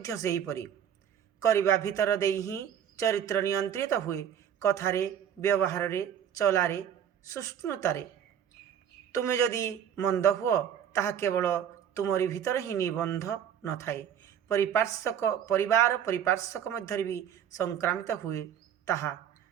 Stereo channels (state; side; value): quieter; left; 9.1 dB